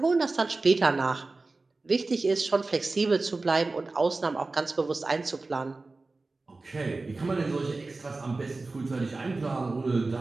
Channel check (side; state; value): left; quieter; 3.5 dB